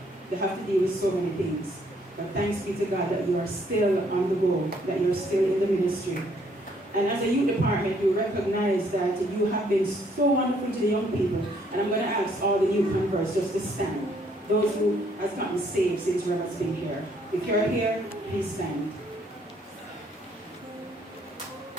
They have to deal with so many things. But thanks be to God that you are still on the go, that you're still in the ministry. And as a youth department, you recognize that you have been so wonderful to the young people. And I'm going to ask all the youth converts just to stand. Those who have gotten saved since Reverend's been here. If you're here, please stand.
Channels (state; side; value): normal; both; correlation 0.66